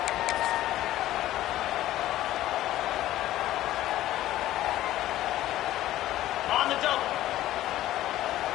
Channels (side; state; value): right; quieter; 14.4 dB